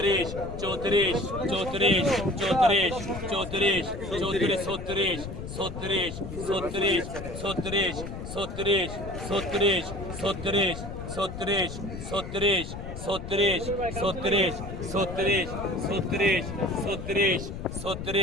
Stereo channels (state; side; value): noise; left; rumble, 9 dB below the sound